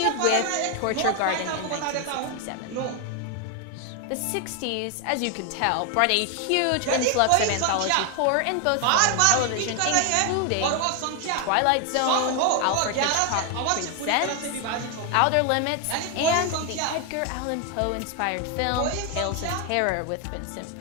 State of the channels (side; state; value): both; different; correlation 0.01